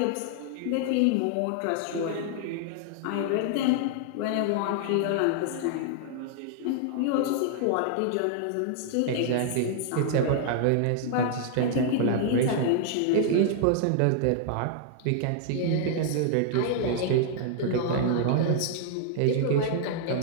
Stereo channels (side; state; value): both; different; correlation -0.01